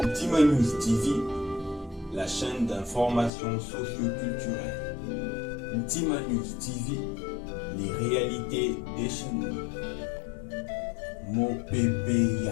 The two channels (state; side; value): drops out; right; at 3.3 s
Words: Ntima News TV, la chaîne d'information socio-culturelle. Ntima News TV, les réalités des chez nous. Mon bébé